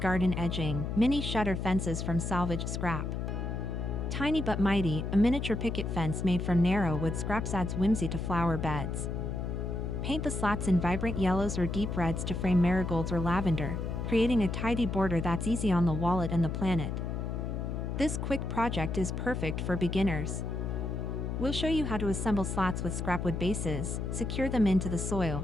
edging, mini shutter fences from salvaged scrap. Tiny but mighty, a miniature picket fence made from narrow wood scraps adds whimsy to flower beds. Paint the slats in vibrant yellows or deep reds to frame marigolds or lavender, creating a tidy border that's easy on the wallet and the planet. This quick project is perfect for beginners. We'll show you how to assemble slats with scrapwood bases, secure them into the soil,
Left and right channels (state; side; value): noise; left; hum, 3 dB below the sound